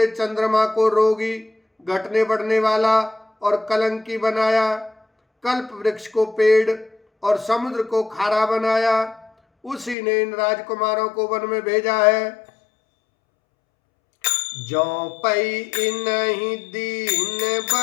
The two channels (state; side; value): drops out; right; at 10.0 s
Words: चंद्रमा को रोगी, घटने बढ़ने वाला और कलंकी बनाया, कल्प वृक्ष को पेड़ और समुद्र को खारा बनाया। उसी ने इन राजकुमारों को वन में भेजा है। जो पई इनहि दीन